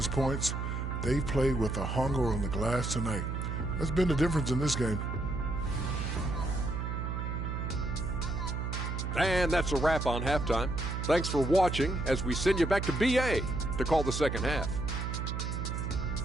points. They played with a hunger on the glass tonight. That's been the difference in this game. And that's a wrap on halftime. Thanks for watching as we send you back to BA to call the second half.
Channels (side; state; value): right; noise; hum, 3 dB below the sound